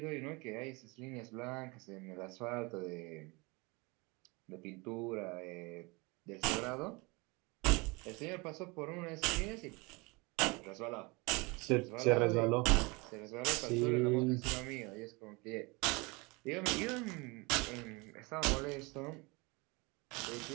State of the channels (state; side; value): quieter; left; 26.8 dB